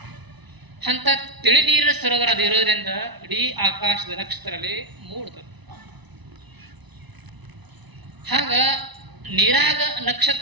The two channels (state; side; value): late; left; 1.0 ms